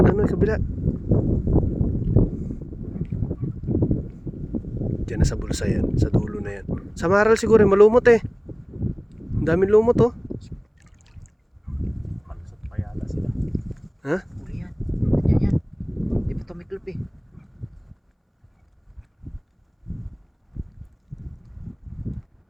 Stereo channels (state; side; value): identical; both; correlation 1.00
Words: Diyan na sa bulsa yan. Sa dulo na yan. Sa maral siguro, malumot eh. Ang daming lumot oh. Malusot pa yata sila. Ha? Huli yan. Yan. Di pa ito may club eh.